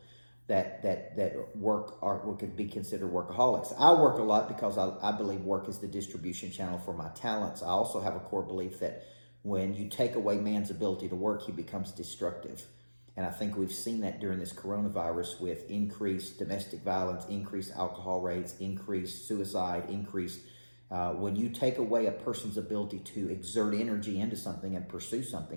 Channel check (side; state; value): both; inverted; correlation -1.00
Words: that work or could be considered workaholics. I work a lot because I believe work is the distribution channel for my talents. I also have a core belief that when you take away man's ability to work, he becomes destructive. And I think we've seen that during this coronavirus with increased domestic violence, increased alcohol rates, increased suicide, when you take away a person's ability to exert energy into something and pursue